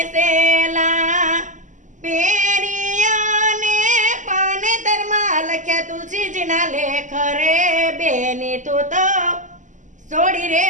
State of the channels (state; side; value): late; left; 0.36 ms